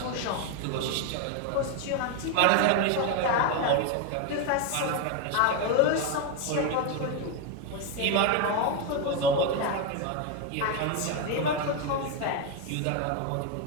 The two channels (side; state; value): both; different; correlation 0.01